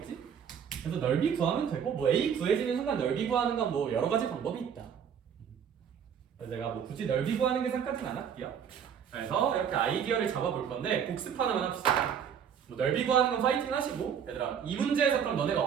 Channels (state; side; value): quieter; left; 7.9 dB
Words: 그래서 넓이 구하면 되고 뭐 A 구해지는 순간 넓이 구하는 건 뭐 여러 가지 방법이 있다. 그래서 제가 뭐 굳이 넓이 구하는 계산까지는 안 할게요. 그래서 이렇게 아이디어를 잡아볼 건데 복습 하나만 합시다. 뭐 넓이 구하는 건 파이팅 하시고 얘들아 이 문제에서 그럼 너네가